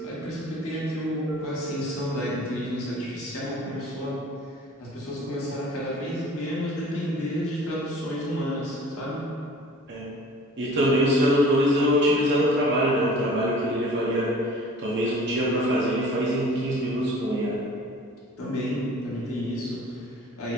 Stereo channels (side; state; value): both; normal; correlation 0.47